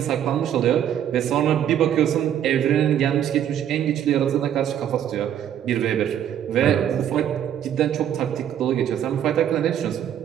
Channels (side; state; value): left; quieter; 10.1 dB